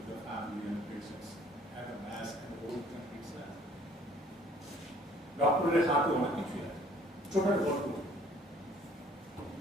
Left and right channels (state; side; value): normal; both; correlation 0.57